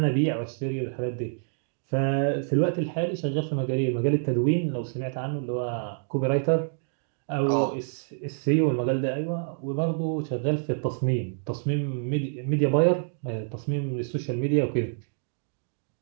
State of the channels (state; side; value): silent; left; digital silence